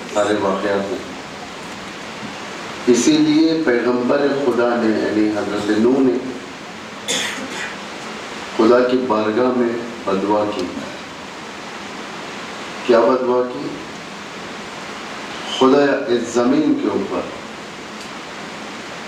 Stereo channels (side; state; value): both; identical; correlation 1.00